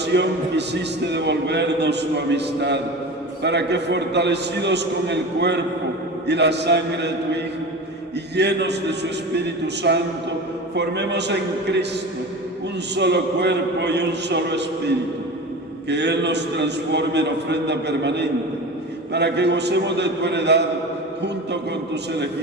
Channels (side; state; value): both; normal; correlation 0.31